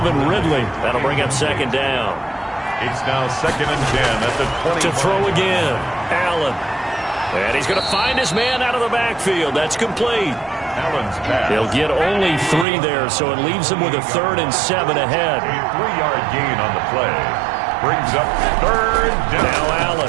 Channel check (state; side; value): drops out; left; at 12.7 s